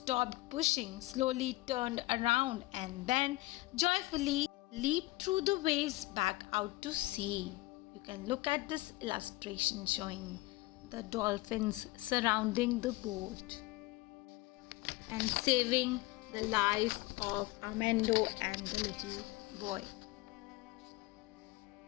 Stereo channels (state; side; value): quieter; right; 20.6 dB